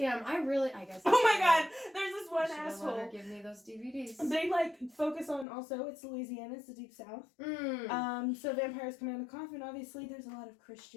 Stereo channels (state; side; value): drops out; right; at 5.5 s